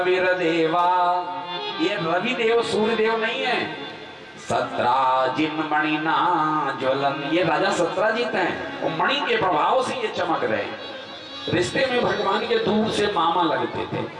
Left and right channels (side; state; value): both; identical; correlation 1.00